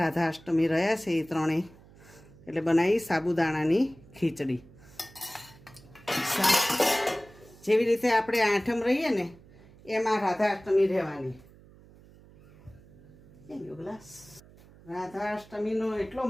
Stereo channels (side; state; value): right; noise; hum, 24 dB below the sound